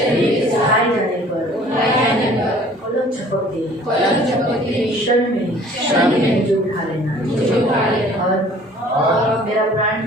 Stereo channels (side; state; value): both; normal; correlation 0.52